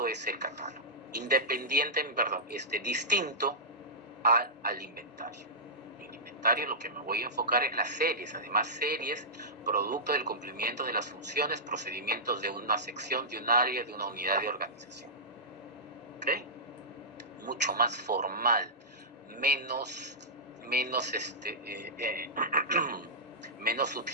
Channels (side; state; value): both; normal; correlation -0.14